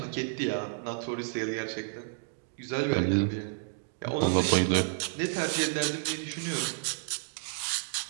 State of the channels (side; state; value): left; silent; digital silence